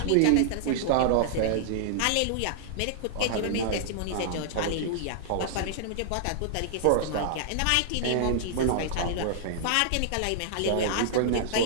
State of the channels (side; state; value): both; different; correlation -0.01